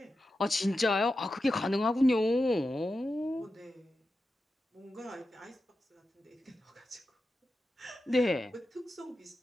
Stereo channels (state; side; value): normal; both; correlation 0.91